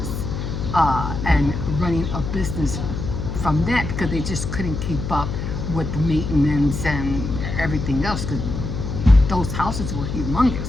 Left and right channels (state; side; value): noise; left; hum, 4 dB below the sound